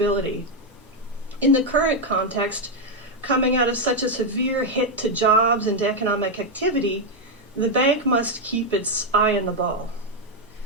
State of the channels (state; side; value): normal; both; correlation 0.02